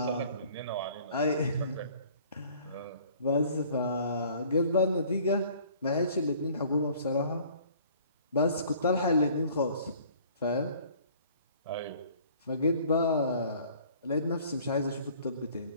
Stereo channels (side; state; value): both; inverted; correlation -0.53